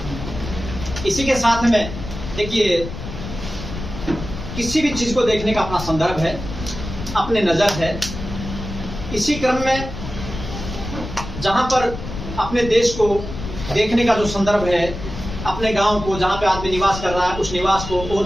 इसी के साथ में देखिए, किसी भी चीज को देखने का अपना संदर्भ है, अपने नजर है। इसी क्रम में जहां पर अपने देश को देखने का जो संदर्भ है, अपने गांव को जहां पे आदमी निवास कर रहा है, उस निवास को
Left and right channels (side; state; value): left; noise; rumble, 9 dB below the sound